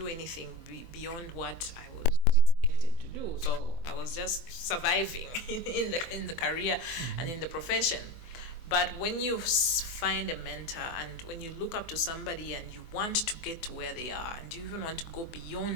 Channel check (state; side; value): late; right; 24 ms